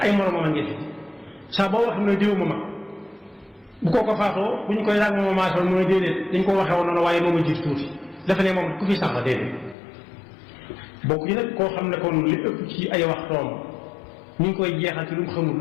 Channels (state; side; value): drops out; right; at 9.8 s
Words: ay moromam a ngi fi saa boo wax ne diw ma mag bu kooko faatoo bu ñu koy laaj moom maasal mooy déedéet dañ ko waxee woon noonu waaye moom a jiitu tuuti dafa ne moom ku fi sax la déedéet bokk yi nag koo xam ne kon li ëpp ci ay waxtoom ñu ngi koy jeexal ci lu mu xamul